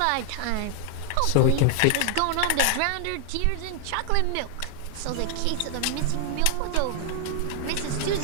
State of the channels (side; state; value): both; different; correlation 0.00